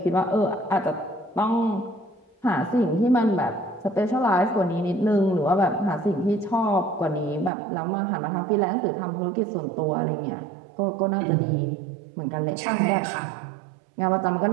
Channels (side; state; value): left; drops out; at 7.5 s